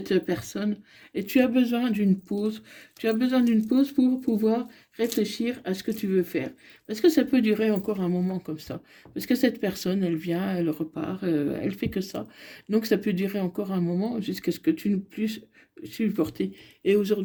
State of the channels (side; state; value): both; identical; correlation 1.00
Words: personne. Et tu as besoin d'une pause. Tu as besoin d'une pause pour pouvoir réfléchir à ce que tu veux faire. Parce que ça peut durer encore un moment comme ça. Parce que cette personne, elle vient, elle repart, elle fait que ça. Donc ça peut durer encore un moment jusqu'à ce que tu ne puisses supporter. Et